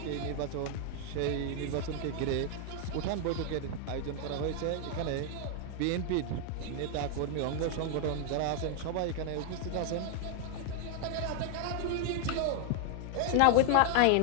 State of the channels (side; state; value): both; different; correlation 0.00